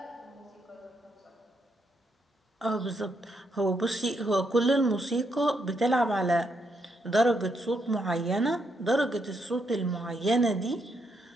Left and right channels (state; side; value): normal; both; correlation 0.78